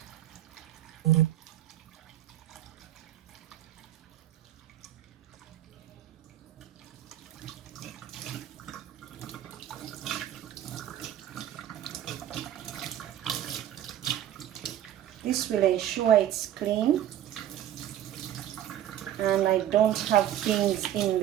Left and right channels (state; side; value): quieter; left; 11.8 dB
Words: This will ensure it's clean and I don't have things in